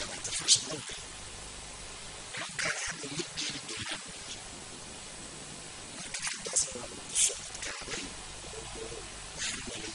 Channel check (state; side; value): identical; both; correlation 1.00